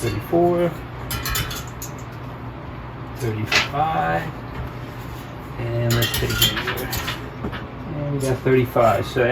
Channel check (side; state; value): both; identical; correlation 1.00